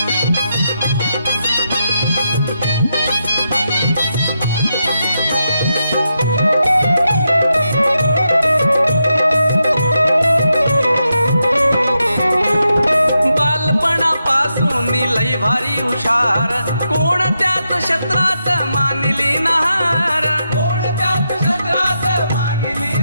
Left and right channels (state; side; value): inverted; both; correlation -0.85